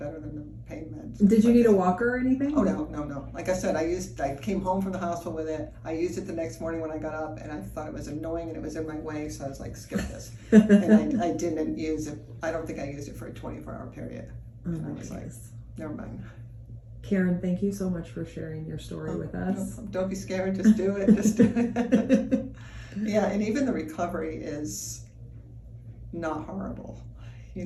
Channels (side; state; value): both; identical; correlation 1.00